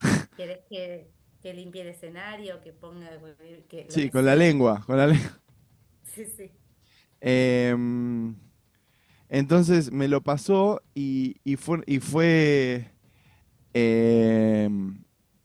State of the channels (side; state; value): both; identical; correlation 1.00